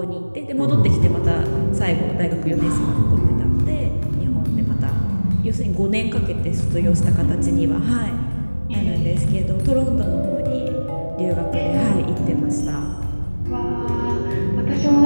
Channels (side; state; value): both; inverted; correlation -1.00